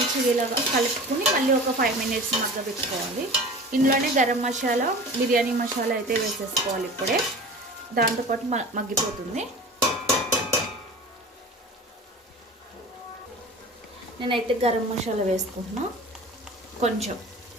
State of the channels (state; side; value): normal; both; correlation 0.38